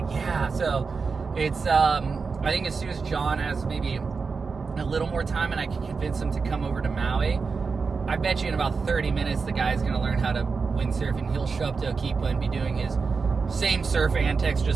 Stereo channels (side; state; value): left; quieter; 4.9 dB